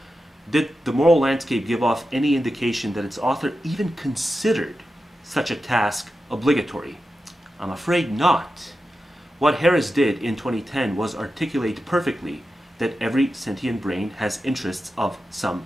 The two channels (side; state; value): both; normal; correlation 0.91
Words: Did the moral landscape give off any indication that its author even considered such a task obligatory? I'm afraid not. What Harris did in 2010 was articulate perfectly that every sentient brain has interests of some